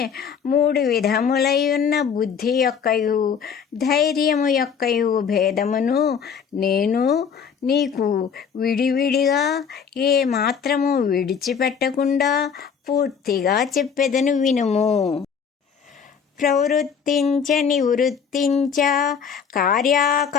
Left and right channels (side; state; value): right; quieter; 6.9 dB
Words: 3 విధములైయున్న బుద్ధి యొక్కయు ధైర్యము యొక్కయు భేదమును నేను నీకు విడివిడిగా ఏ మాత్రము విడిచిపెట్టకుండా పూర్తిగా చెప్పెదను వినుము. ప్రవృత్తించ నివృత్తించ